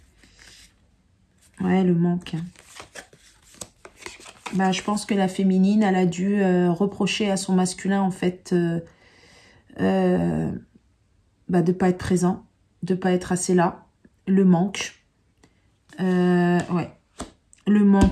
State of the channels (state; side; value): identical; both; correlation 1.00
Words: Ouais, le manque. Bah, je pense que la féminine, elle a dû reprocher à son masculin, en fait, bah, de ne pas être présent, de ne pas être assez là. Le manque. Ouais. Le